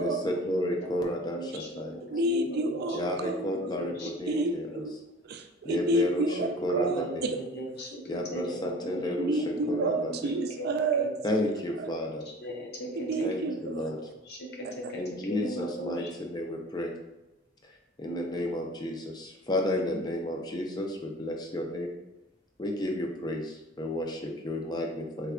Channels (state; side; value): normal; both; correlation 0.43